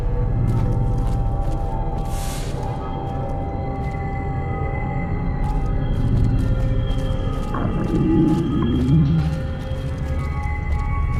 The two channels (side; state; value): both; identical; correlation 1.00